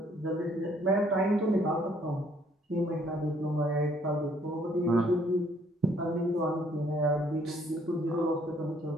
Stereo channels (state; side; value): normal; both; correlation 0.64